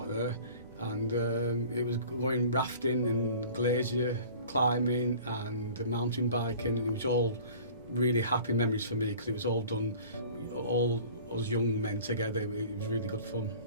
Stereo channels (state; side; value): inverted; both; correlation -0.45